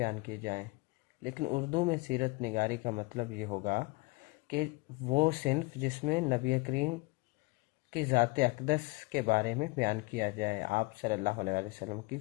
کی جائیں، لیکن اردو میں سیرت نگاری کا مطلب یہ ہوگا کہ وہ صنف جس میں نبی کریم کی ذات اقدس کے بارے میں بیان کیا جائے، آپ صلی اللہ علیہ وسلم کی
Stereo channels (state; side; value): quieter; right; 24.4 dB